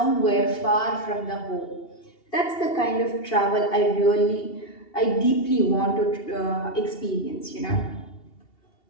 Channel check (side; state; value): right; late; 2.8 ms